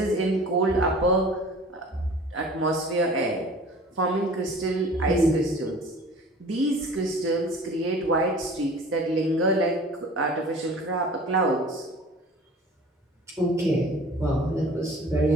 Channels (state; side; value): normal; both; correlation 0.45